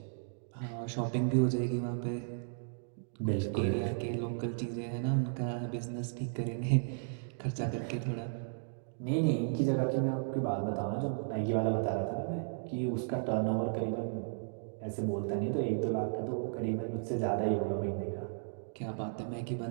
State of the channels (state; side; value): silent; left; digital silence